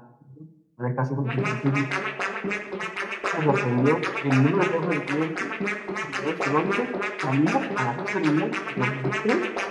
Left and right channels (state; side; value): identical; both; correlation 1.00